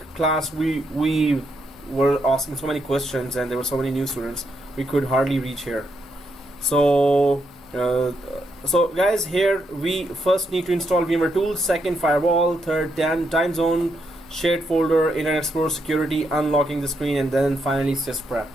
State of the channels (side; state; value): both; normal; correlation 0.79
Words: class, we were asking so many questions and there were so many new students, we could hardly reach here. So, guys, here we first need to install VMware Tools, second firewall, third time zone, shared folder, Internet Explorer security, unlocking the screen, and then finally sysprep.